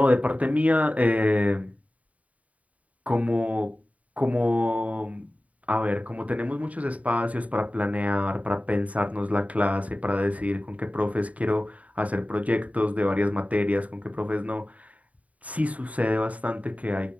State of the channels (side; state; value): left; late; 0.069 ms